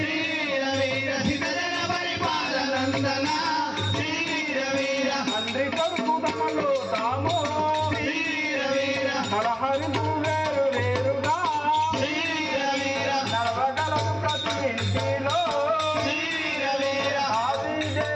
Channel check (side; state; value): both; identical; correlation 1.00